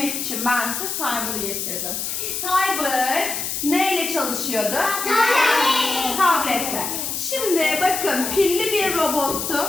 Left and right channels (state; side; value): noise; left; hiss, 3 dB below the sound